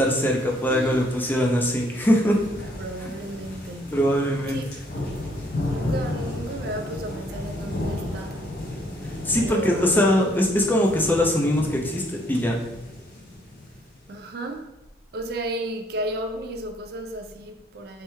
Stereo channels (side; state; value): both; normal; correlation 0.66